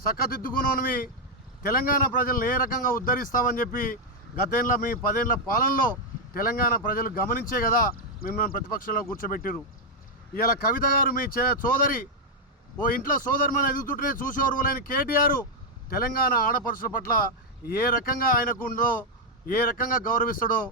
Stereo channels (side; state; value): both; normal; correlation 0.01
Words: చక్కదిద్దుకున్నవి తెలంగాణ ప్రజలను ఏ రకంగా ఉద్ధరిస్తావని చెప్పి గతేళ్ళ మీ 10 ఏళ్ల పాలనలో తెలంగాణ ప్రజలు గమనించే కదా మిమ్మల్ని ప్రతిపక్షంలో కూర్చోబెట్టారు. ఇలా కవిత గారు మీ సోదరి ఓ ఇంట్లో సోదరుమని ఎదుగుతుంటేనే చూసి ఓర్వలేని కేటీఆర్ తెలంగాణ ఆడపడుచుల పట్ల ఏ రకంగా ఆయనకు ఉందో, ఏ రకంగా గౌరవిస్తాడో